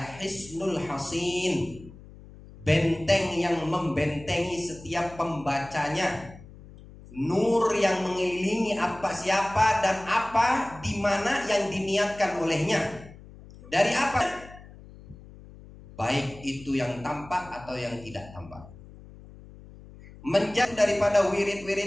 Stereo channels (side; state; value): left; noise; hum, 19 dB below the sound